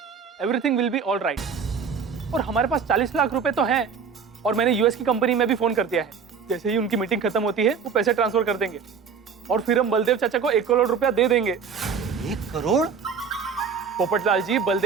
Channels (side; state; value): left; quieter; 6.2 dB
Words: everything will be all right. और हमारे पास 40 लाख रुपए तो हैं, और मैंने यूएस की कंपनी में भी फोन कर दिया है। जैसे ही उनकी मीटिंग खत्म होती है वो पैसे ट्रांसफर कर देंगे, और फिर हम बलदेव चाचा को 1 करोड़ रुपया दे देंगे। 1 करोड़? पोपटलाल जी,